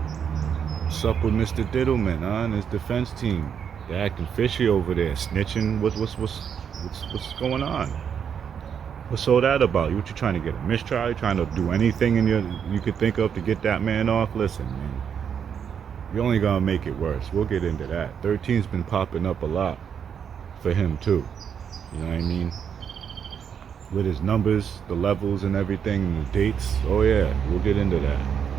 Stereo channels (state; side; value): quieter; left; 7.7 dB